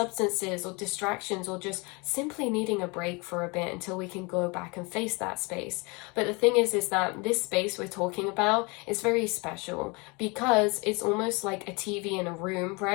or distractions, or just simply needing a break for a bit until we can go back and face that space. But the thing is that this space we're talking about is very special, because it's almost like a TV in a room,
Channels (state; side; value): quieter; right; 28.4 dB